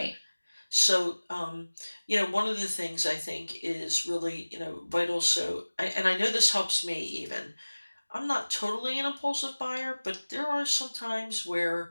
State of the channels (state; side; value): inverted; both; correlation -1.00